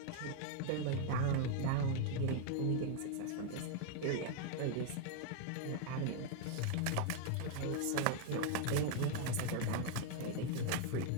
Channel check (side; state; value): both; different; correlation 0.00